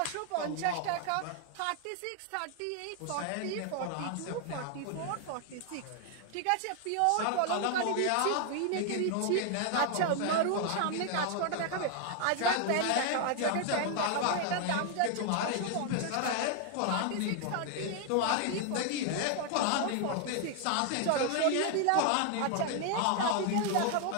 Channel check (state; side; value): different; both; correlation 0.00